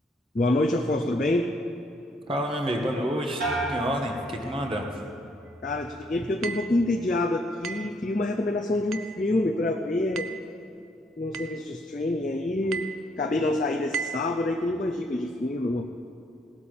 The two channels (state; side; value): normal; both; correlation 0.69